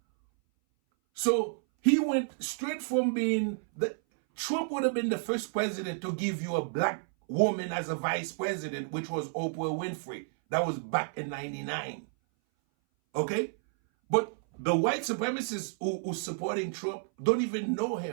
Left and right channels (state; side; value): silent; left; 57 dB below the other